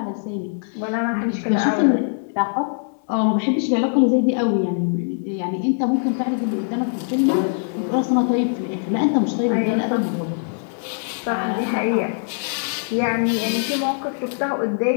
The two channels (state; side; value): silent; right; digital silence